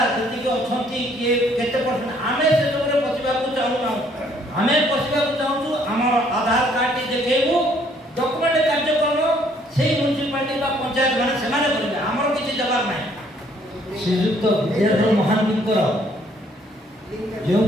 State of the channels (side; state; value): both; normal; correlation 0.64